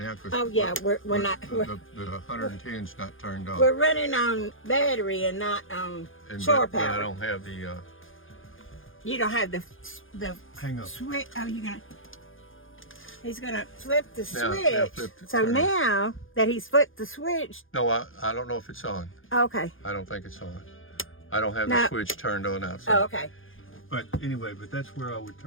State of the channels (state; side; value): late; right; 0.59 ms